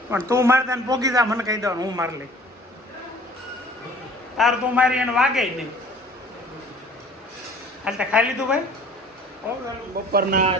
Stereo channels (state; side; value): normal; both; correlation 0.50